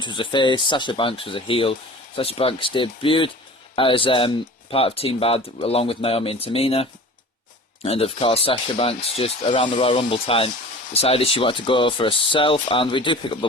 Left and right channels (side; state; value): both; normal; correlation 0.40